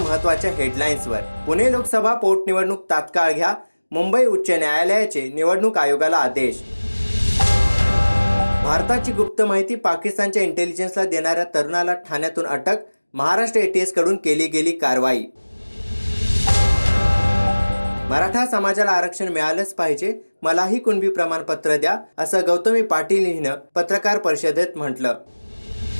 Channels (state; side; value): inverted; both; correlation -1.00